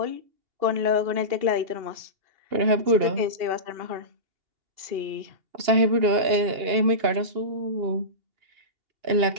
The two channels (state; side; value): late; left; 2.9 ms